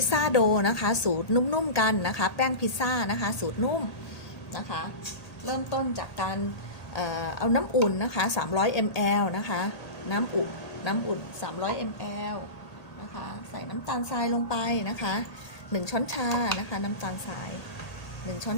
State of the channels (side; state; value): right; late; 1.8 ms